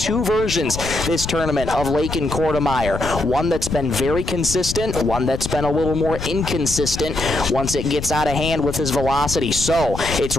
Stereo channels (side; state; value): left; noise; rumble, 7 dB below the sound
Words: versions this tournament of Lakin Kortemeyer. One that's been very consistent, one that's been a little more inconsistent once it gets out of hand with his velocity. So it's